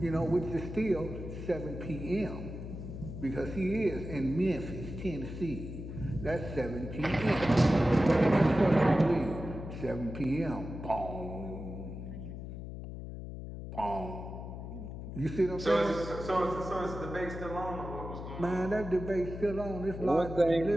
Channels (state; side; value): noise; left; hum, 9 dB below the sound